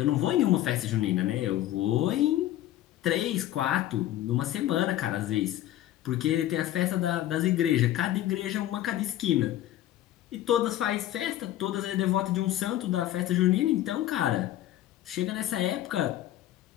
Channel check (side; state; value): right; quieter; 13.5 dB